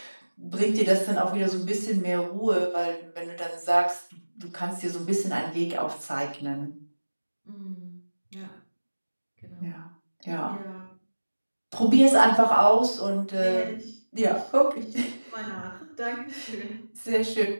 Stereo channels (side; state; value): both; inverted; correlation -1.00